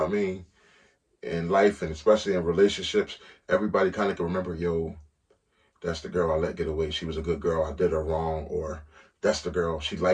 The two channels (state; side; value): identical; both; correlation 1.00